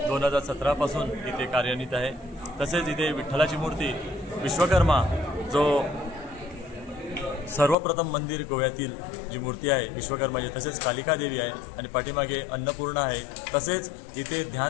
2017 पासून इथे कार्यान्वित आहे. तसेच इथे विठ्ठलाची मूर्ती विश्वकर्मा जो सर्वप्रथम मंदिर गोव्यातील जी मूर्ती आहे विश्वकर्माची, तसेच कालिका देवी आहे आणि पाठीमागे अन्नपूर्णा आहे. तसेच इथे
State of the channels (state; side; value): drops out; right; at 7.8 s